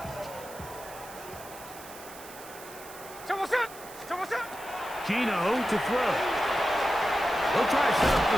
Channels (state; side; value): noise; right; hiss, 17 dB below the sound